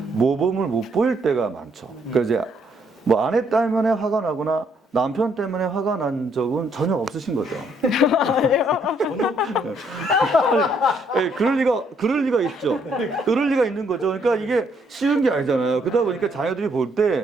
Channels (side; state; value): both; normal; correlation 0.70